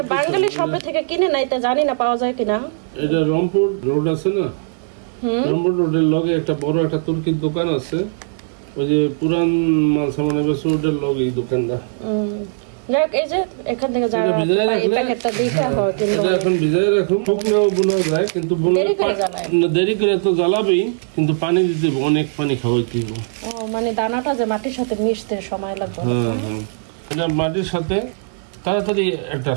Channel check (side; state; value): left; silent; 58 dB below the other